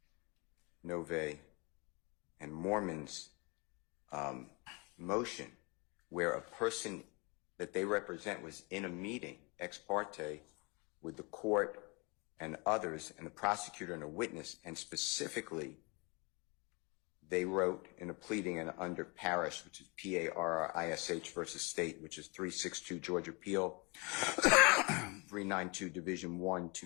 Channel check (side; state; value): right; quieter; 29.8 dB